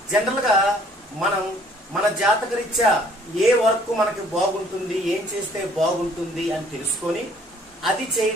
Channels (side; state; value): both; normal; correlation 0.59